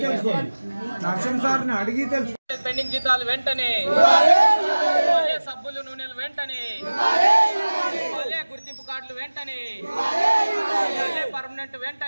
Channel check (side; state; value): both; inverted; correlation -1.00